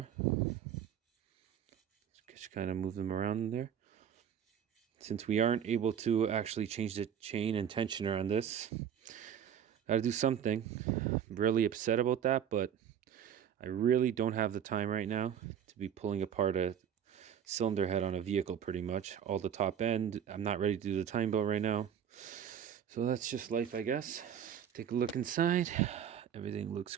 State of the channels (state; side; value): quieter; left; 8.9 dB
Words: Just kind of move them around in there. Since we aren't able to actually change the chain and tensioner on this, gotta do something. I'm really upset about that, but I really don't have the time right now to be pulling apart a cylinder head on a vehicle pretty much. All the top end, I'm not ready to do the time belt right now. So that's just life, I guess. Take a look inside. Everything looks